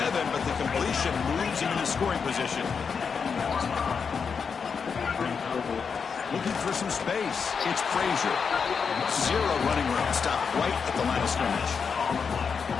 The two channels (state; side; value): quieter; right; 5.9 dB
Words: but the completion moves him into scoring position. Looking for some space. It's Frazier. Zero running room. Stop right at the line of scrimmage.